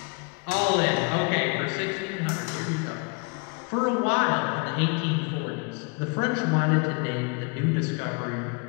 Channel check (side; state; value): right; quieter; 33.0 dB